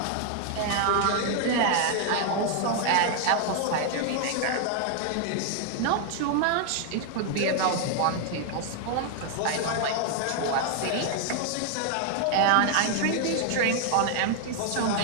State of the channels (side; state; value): both; different; correlation 0.00